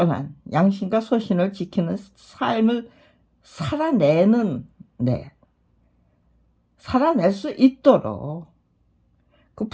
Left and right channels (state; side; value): identical; both; correlation 1.00